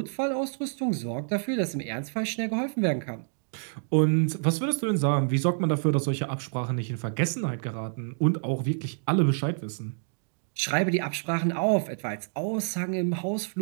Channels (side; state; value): left; silent; digital silence